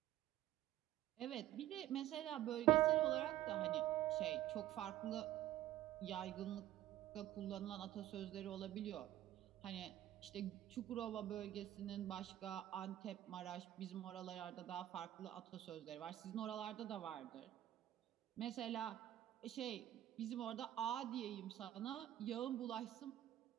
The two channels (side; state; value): left; quieter; 13.5 dB